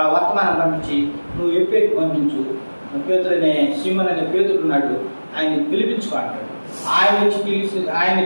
వర్తమానం పంపించి నువ్వు ఎప్పేకి పంపించు, పేతురు అనే సీమన్ అనే పేతుడు ఉన్నాడు, ఆయన పిలిపించుకో అంటాడు. ఆయన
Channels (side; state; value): both; inverted; correlation -1.00